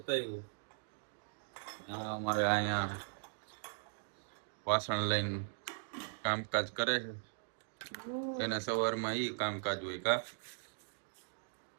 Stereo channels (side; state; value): left; silent; digital silence